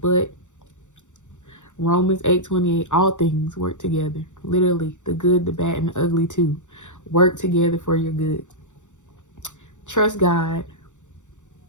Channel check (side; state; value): right; late; 0.85 ms